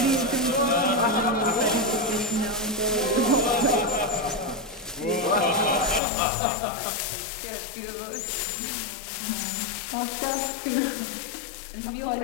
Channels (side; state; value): right; drops out; at 6.0 s